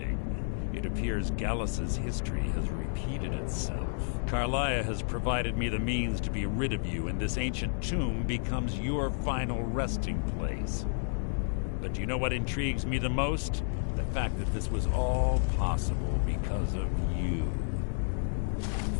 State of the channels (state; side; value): silent; right; digital silence